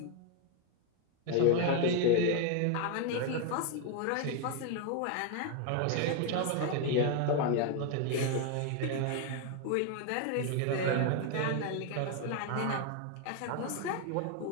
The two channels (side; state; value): both; different; correlation 0.01